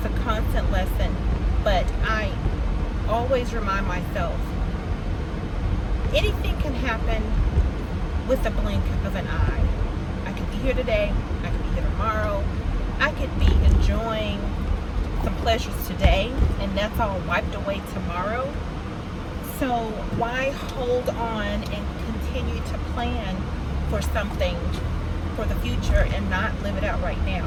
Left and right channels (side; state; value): both; identical; correlation 1.00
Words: a constant lesson. But I always remind myself, anything can happen with a blink of an eye. I could be here today, I could be here tomorrow, I could be enjoying some pleasures today, and that's all wiped away tomorrow. So why hold on and continue to plan for something for the future and not live it out right